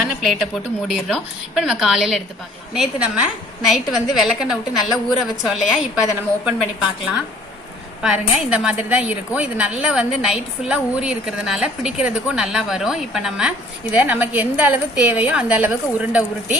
பிளேட்டை போட்டு மூடிடுறோம். இப்போ நம்ம காலையில எடுத்து பார்க்கலாம். நேற்று நம்ம நைட்டு வந்து விளக்கெண்ணெய் விட்டு நல்லா ஊற வச்சோம் இல்லையா, இப்போ அதை நம்ம ஓப்பன் பண்ணி பார்க்கலாம். பாருங்க இந்த மாதிரி தான் இருக்கும். இது நல்லா வந்து நைட் ஃபுல்லா ஊறி இருக்கிறதுனால பிடிக்கிறதுக்கும் நல்லா வரும். இப்போ நம்ம இதை நமக்கு எந்த அளவு தேவையோ அந்த அளவுக்கு உருண்டை உருட்டி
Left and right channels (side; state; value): both; normal; correlation 0.55